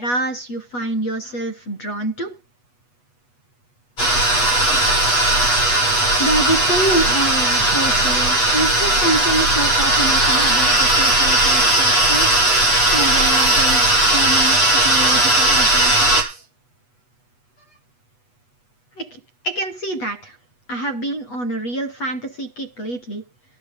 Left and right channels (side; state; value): right; late; 8.2 ms